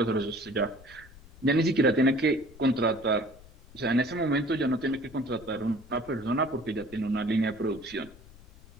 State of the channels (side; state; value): left; noise; rumble, 22 dB below the sound